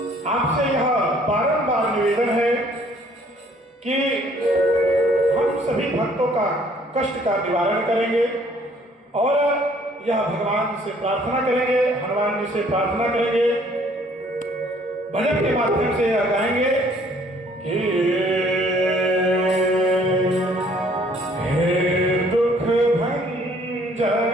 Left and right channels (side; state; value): both; normal; correlation 0.60